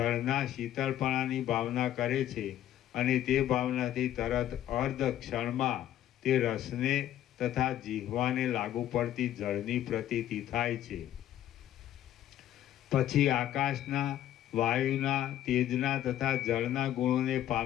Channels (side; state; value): right; quieter; 12.1 dB